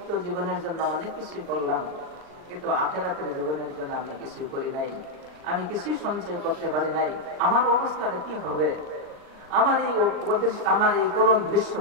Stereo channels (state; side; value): late; left; 39 ms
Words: জীবনের জন্য অনেক কিছুই করলাম, কিন্তু আখিরাতের জীবনের জন্য আমি কিছুই করি নাই, আমি কিছুই সঞ্চয় করতে পারি নাই। আমার অবস্থাটা কি হবে? আমার এই করুণ দৃশ্য